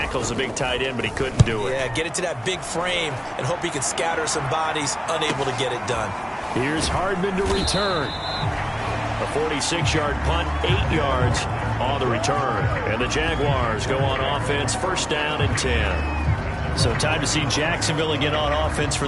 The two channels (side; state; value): both; identical; correlation 1.00